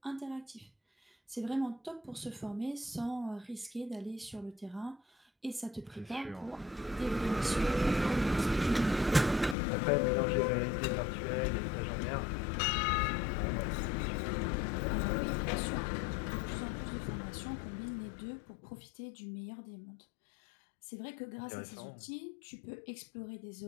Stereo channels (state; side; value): drops out; right; at 9.6 s